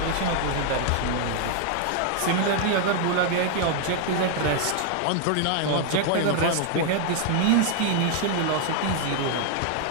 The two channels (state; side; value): different; both; correlation 0.00